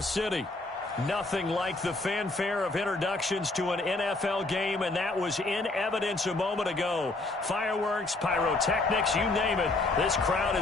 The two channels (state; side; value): quieter; right; 3.1 dB